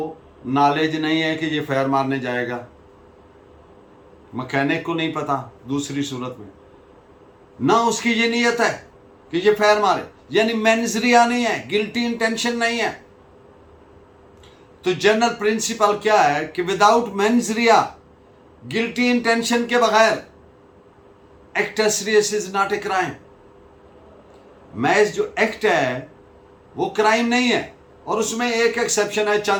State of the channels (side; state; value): both; identical; correlation 1.00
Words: नॉलेज नहीं है कि ये फायर मारने जाएगा, मैकेनिक को नहीं पता, दूसरी सूरत में ना उसकी ये नीयत है कि ये फायर मारे, यानी मेंजरिया नहीं है, गिल्टी इंटेंशन नहीं है। तो जनरल प्रिंसिपल क्या है कि विदाउट मेंजरिया, गिल्टी इंटेंशन के बगैर, act as serious is not a crime. मैच जो एक्ट है वो क्राइम नहीं है, और उसमें एक एक्सेप्शन है